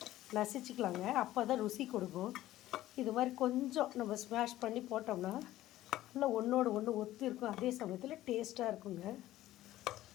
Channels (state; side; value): quieter; right; 14.9 dB